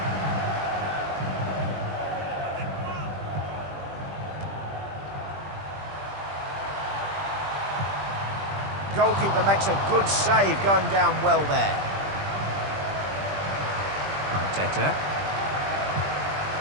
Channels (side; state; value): left; late; 20 ms